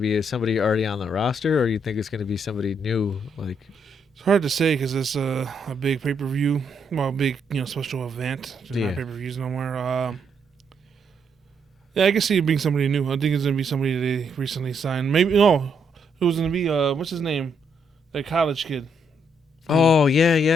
be somebody already on the roster, or do you think it's going to be somebody new? Like, it's hard to say because it's a big pay-per-view, well, big special event. There's not pay-per-views no more. Yeah, I can see it being somebody new. I think it's going to be somebody they recently signed. Maybe who's going to be what's his name? That college kid. Oh yeah.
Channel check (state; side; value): normal; both; correlation 0.75